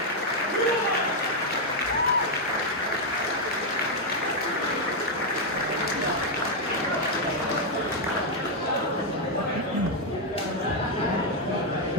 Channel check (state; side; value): normal; both; correlation 0.00